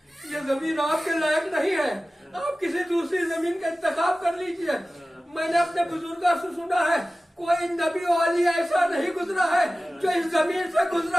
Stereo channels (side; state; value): both; normal; correlation 0.96